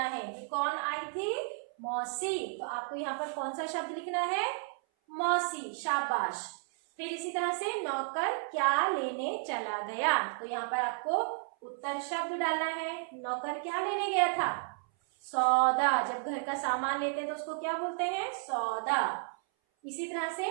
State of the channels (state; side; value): silent; left; 56 dB below the other